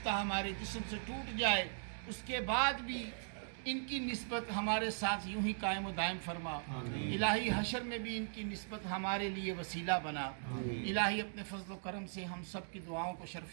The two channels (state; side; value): silent; left; digital silence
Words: ہمارے جسم سے ٹوٹ جائے، اس کے بعد بھی ان کی نسبت ہمارے ساتھ یوں ہی قائم و دائم فرما۔ الہی حشر میں بھی ان کی نسبت ہمارے لیے وسیلہ بنا۔ الہی اپنے فضل و کرم سے ہم سب کی دعاؤں کو